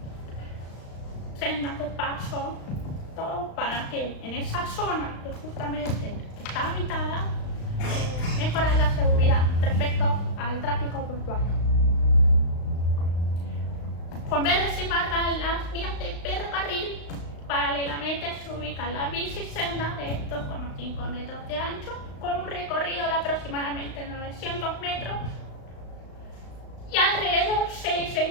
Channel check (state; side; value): late; right; 35 ms